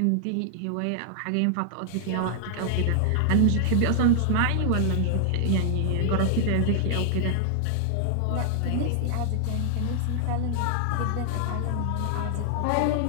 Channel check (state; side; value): different; both; correlation 0.00